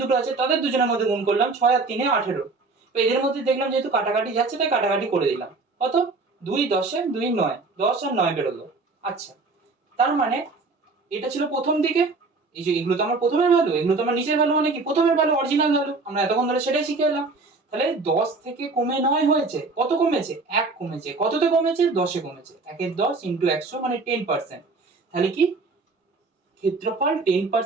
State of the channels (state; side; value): quieter; left; 3.9 dB